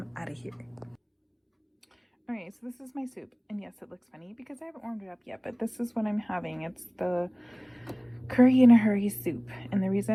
out of here. All right, so this is my soup. And yes, it looks funny because I haven't warmed it up yet, but this is what I'm having. It's the curry in a hurry soup. And the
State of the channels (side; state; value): both; identical; correlation 1.00